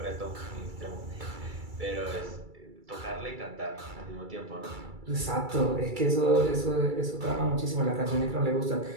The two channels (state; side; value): late; left; 2.3 ms